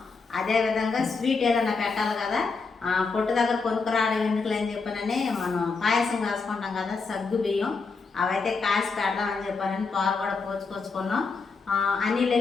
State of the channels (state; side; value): quieter; right; 4.5 dB